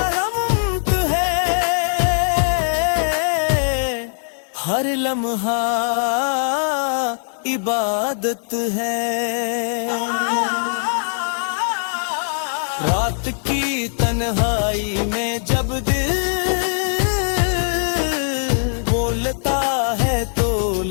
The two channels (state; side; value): silent; right; digital silence